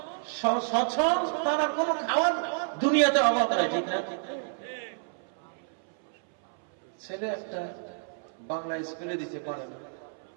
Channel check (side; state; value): left; silent; 58 dB below the other